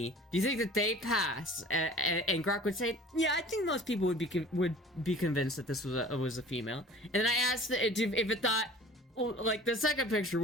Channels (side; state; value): both; normal; correlation 0.45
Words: do you think that they pass?" And Grok would say, "Yeah, I think most people would be convinced that this was a female." And then I asked it if it thought, like, the second picture,